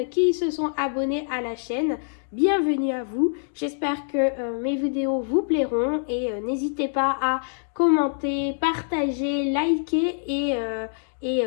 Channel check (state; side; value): silent; right; digital silence